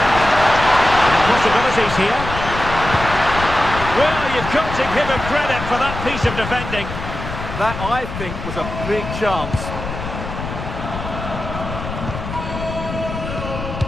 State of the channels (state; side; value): noise; left; rumble, 7 dB below the sound